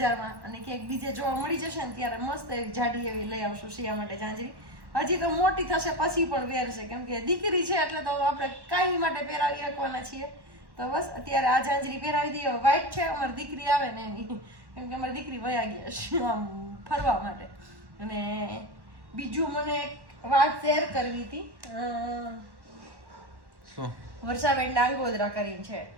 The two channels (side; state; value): left; late; 1.1 ms